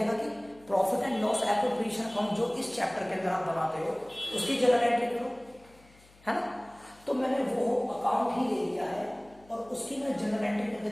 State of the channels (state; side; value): noise; left; hum, 27 dB below the sound